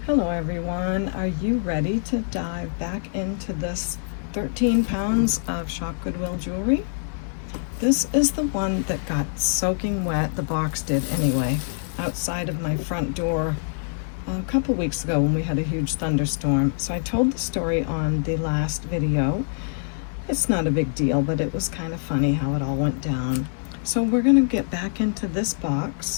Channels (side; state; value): right; silent; digital silence